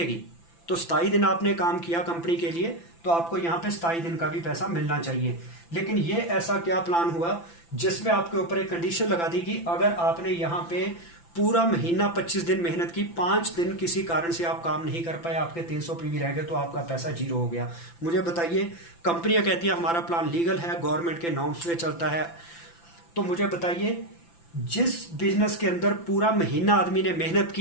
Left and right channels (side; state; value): right; late; 5.9 ms